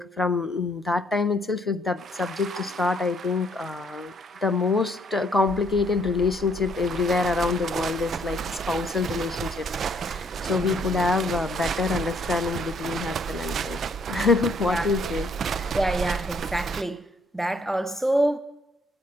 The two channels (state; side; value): normal; both; correlation 0.67